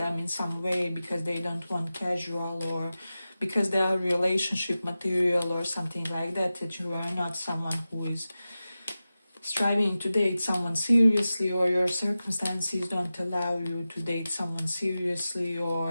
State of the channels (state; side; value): inverted; both; correlation -0.94